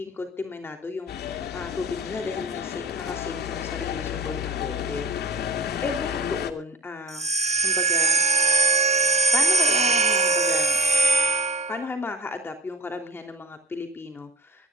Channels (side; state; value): both; normal; correlation 0.37